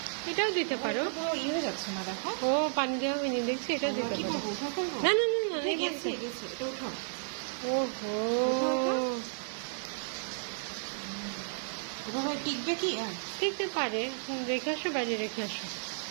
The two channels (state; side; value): silent; left; digital silence